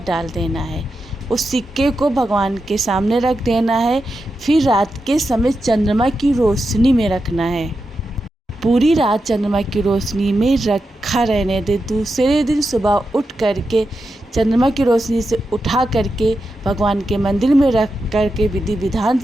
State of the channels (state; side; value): normal; both; correlation 0.88